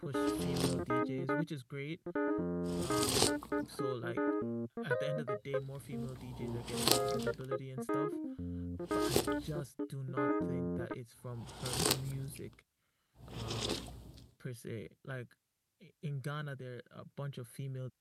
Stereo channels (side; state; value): both; identical; correlation 1.00